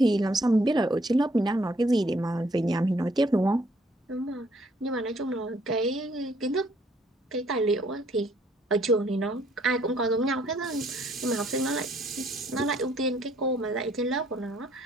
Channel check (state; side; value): normal; both; correlation 0.65